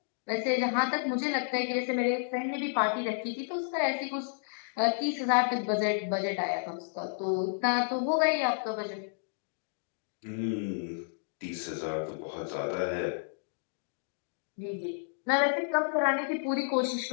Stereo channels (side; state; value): right; silent; digital silence